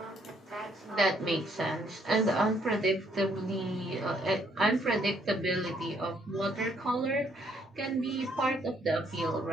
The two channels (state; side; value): normal; both; correlation 0.69